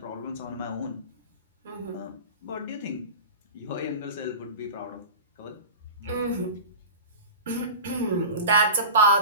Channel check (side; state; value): both; inverted; correlation -0.32